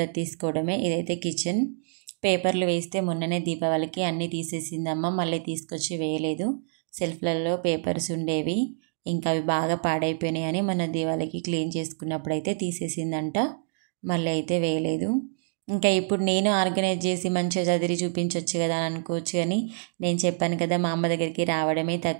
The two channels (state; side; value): silent; left; digital silence